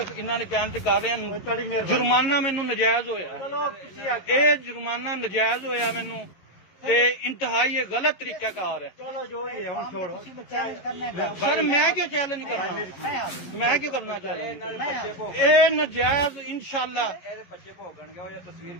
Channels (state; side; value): late; right; 11 ms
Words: इन्होंने कहने से कर रहे हैं, जुर्माना मैनू नजायज होया, ये जुर्माना नजायज होया मैनू, ते इंतहाई ये गलत तरीका कार है। चलो जो ही है छोड़ो, चैलेंज करने का। सर मैं क्यों चैलेंज करना, मैं क्यों करना चाहिए? ये नजायज इंशाल्लाह